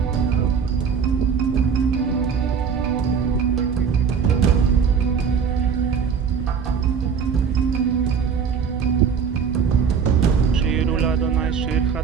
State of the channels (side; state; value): left; quieter; 6.6 dB